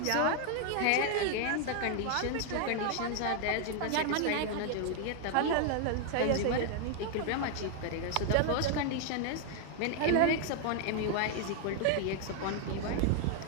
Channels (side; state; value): both; different; correlation 0.00